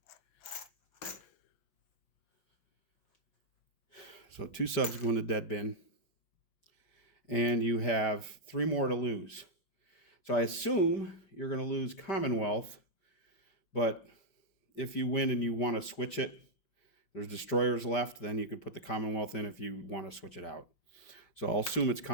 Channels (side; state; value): right; late; 5.1 ms